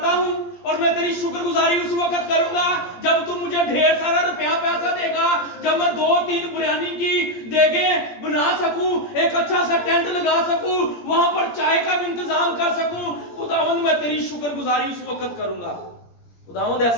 हूं और मैं तेरी शुक्रगुजारी उस वक्त करूंगा जब तू मुझे ढेर सारा रुपया पैसा देगा, जब मैं 2-3 बिरयानी की देगे बना सकूं, एक अच्छा सा टेंट लगा सकूं, वहां पर चाय का भी इंतजाम कर सकूं। खुदावंद मैं तेरी शुक्रगुजारी उस वक्त करूंगा। खुदावंद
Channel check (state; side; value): late; right; 17 ms